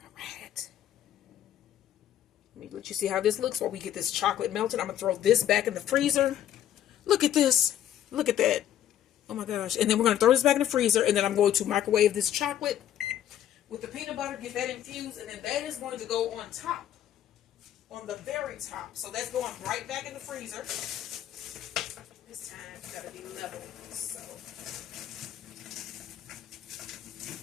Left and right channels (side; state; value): right; quieter; 11.1 dB